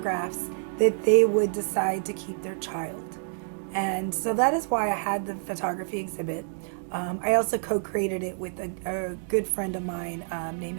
that they would decide to keep their child. And so that is why I had the photography exhibit. I also co-created it with a good friend of mine named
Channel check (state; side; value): silent; left; digital silence